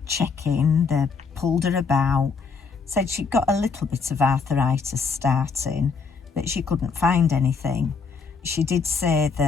check-in, they pulled her about, said she'd got a little bit of arthritis starting, but she couldn't find anything. She did say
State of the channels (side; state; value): right; quieter; 5.1 dB